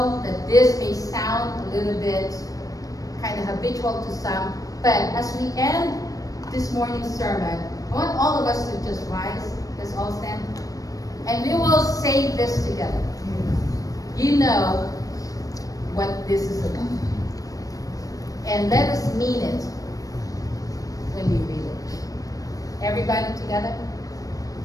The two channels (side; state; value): right; late; 0.17 ms